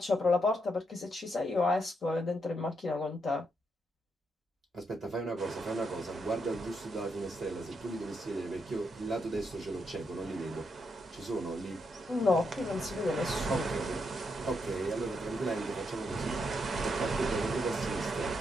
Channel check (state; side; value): normal; both; correlation 0.80